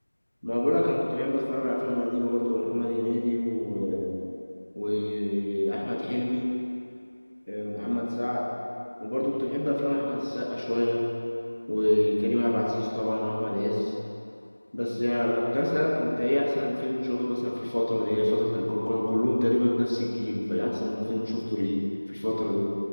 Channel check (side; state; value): both; inverted; correlation -1.00